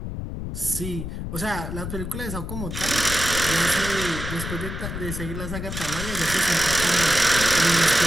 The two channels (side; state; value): left; noise; rumble, 6 dB below the sound